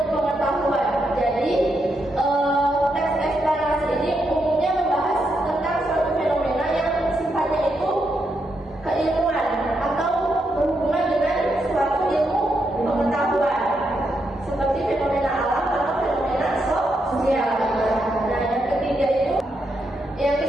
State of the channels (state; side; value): normal; both; correlation 0.81